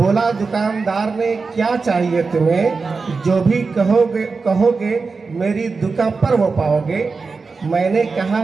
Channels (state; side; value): quieter; left; 4.5 dB